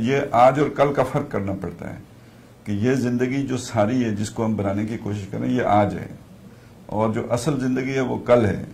یہ آج اور کل کا فرق کرنا پڑتا ہے کہ یہ زندگی جو ساری ہے جس کو ہم بنانے کی کوشش کریں یہ آج ہے, اور جو اصل زندگی ہے وہ کل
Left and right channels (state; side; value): identical; both; correlation 1.00